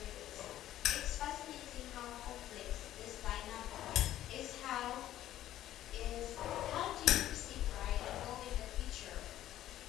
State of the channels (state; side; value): quieter; right; 13.0 dB